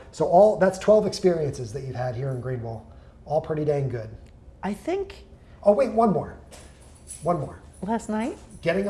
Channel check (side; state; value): both; identical; correlation 1.00